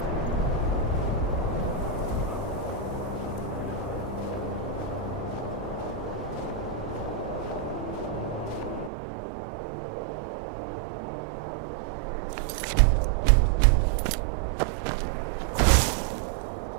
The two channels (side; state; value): left; drops out; at 8.9 s